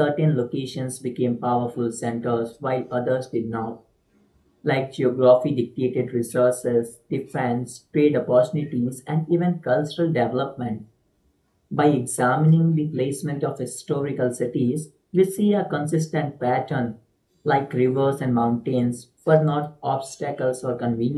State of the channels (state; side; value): identical; both; correlation 1.00